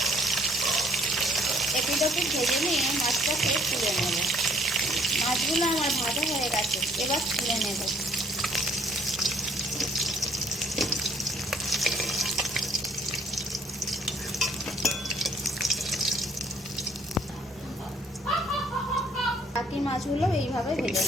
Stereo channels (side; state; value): both; normal; correlation 0.61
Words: এপিটোপিট ভেজে নিয়ে মাছটাকে তুলে নেব। মাছগুলো আমার ভাজা হয়ে গেছে, এবার তুলে নেব। বাকি মাছগুলো এইভাবে ভেজে